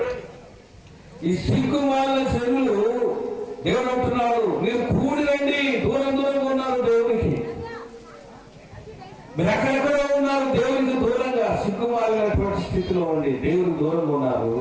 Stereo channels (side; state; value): both; identical; correlation 1.00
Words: ఈ సిగ్గుమాలిన జనులు దేవుడు అంటున్నాడు, మీరు కూడి రండి. దూరం దూరంగా ఉన్నారు దేవునికి, మీరు ఎక్కడెక్కడో ఉన్నారు దేవునికి దూరంగా, సిగ్గుమాలినటువంటి స్థితిలో ఉండి దేవునికి దూరంగా ఉన్నారు.